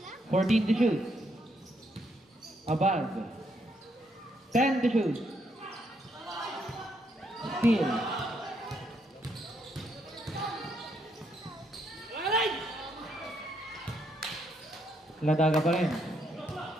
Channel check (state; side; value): normal; both; correlation 0.75